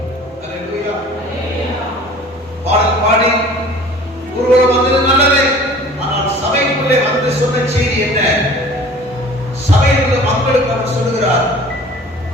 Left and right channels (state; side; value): normal; both; correlation 0.46